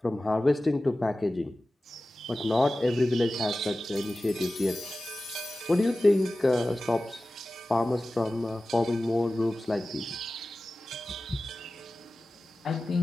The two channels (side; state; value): both; normal; correlation 0.96